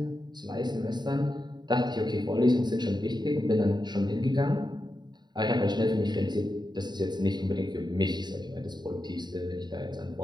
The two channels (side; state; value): left; late; 0.21 ms